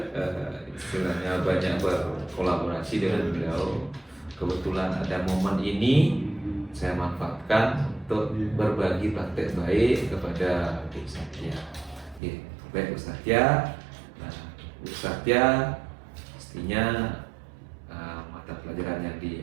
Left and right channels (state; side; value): drops out; left; at 12.2 s